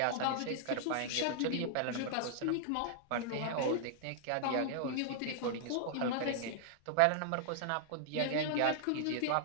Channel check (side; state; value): both; different; correlation -0.01